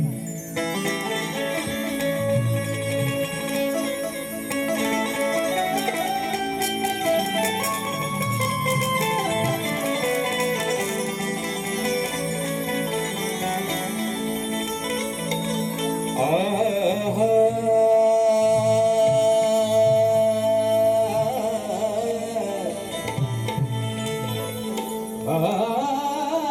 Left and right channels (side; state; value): both; identical; correlation 1.00